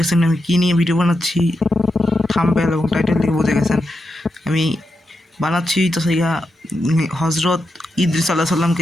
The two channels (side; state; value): both; normal; correlation 0.87